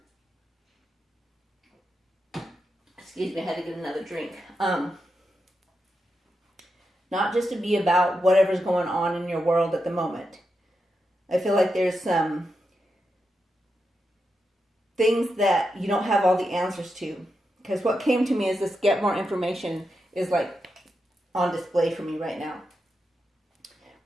Excuse me, I had to get another drink. Not just to be about whatever's going on in your world at the moment. I feel like there's some things that you don't have all the answers to. Because what came to me is this get more information is like on display for me right now.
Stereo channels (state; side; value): normal; both; correlation 0.87